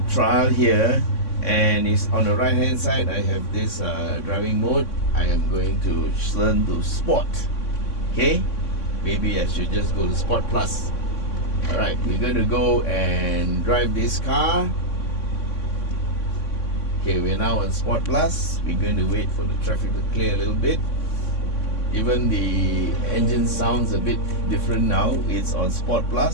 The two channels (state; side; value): late; right; 3.6 ms